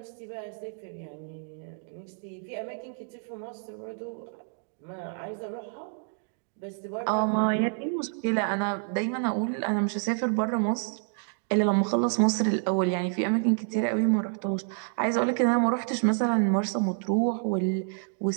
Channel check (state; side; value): silent; left; 59 dB below the other